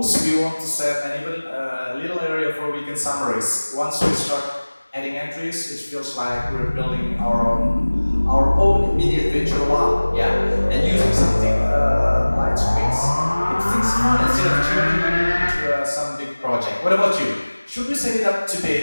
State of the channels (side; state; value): both; inverted; correlation -1.00